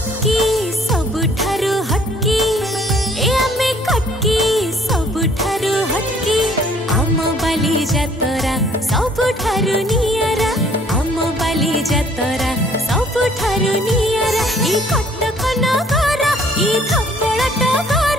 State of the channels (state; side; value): normal; both; correlation 0.59